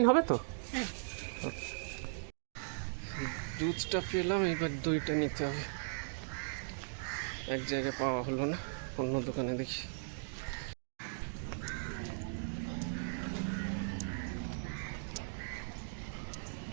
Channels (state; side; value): silent; left; digital silence